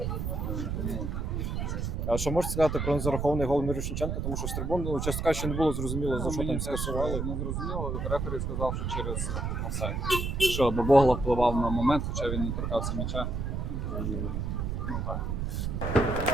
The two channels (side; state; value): right; noise; rumble, 2 dB below the sound